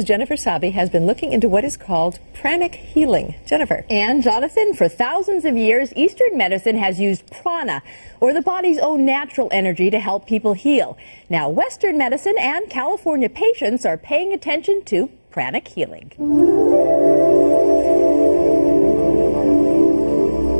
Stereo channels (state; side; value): inverted; both; correlation -1.00